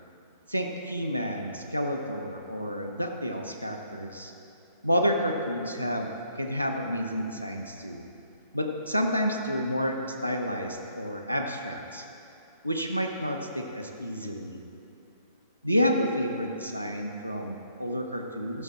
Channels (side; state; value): both; inverted; correlation -0.70